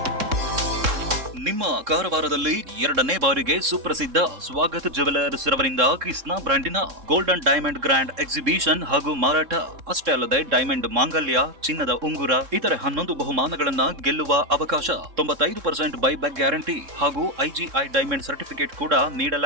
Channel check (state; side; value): late; left; 3.7 ms